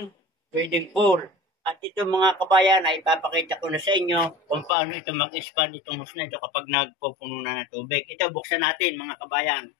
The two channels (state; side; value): drops out; right; at 4.7 s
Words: pwedeng pool. At ito mga kabayan ay ipapakita ko na sa inyo kung paano ito mag-expand itong hose na ito kapag nagpupuno na ng tubig. Ito buksan natin mga kabayan.